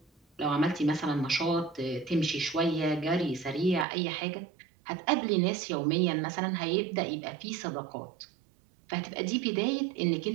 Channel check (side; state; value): left; drops out; at 3.9 s